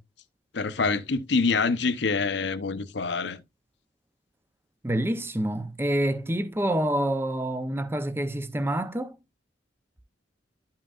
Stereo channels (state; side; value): normal; both; correlation 0.58